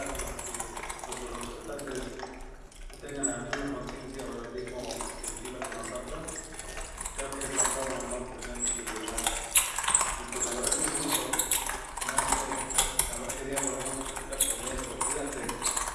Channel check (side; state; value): both; identical; correlation 1.00